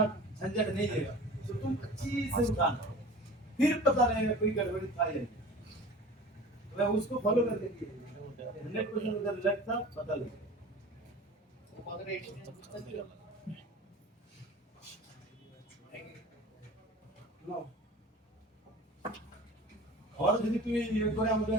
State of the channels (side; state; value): both; normal; correlation 0.40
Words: झंझट नहीं देगा, तो तुम अच्छी से उठाना, फिर पता रहेगा कोई गड़बड़ी था या नहीं, मैं उसको फॉलो कर देंगे 100% उधर लगता पता लगेगा। আর যদি তুমি ইয়ে করে আমাদের